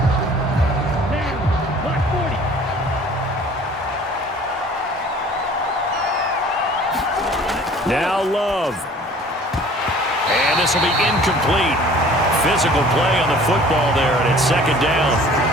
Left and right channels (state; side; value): normal; both; correlation 0.50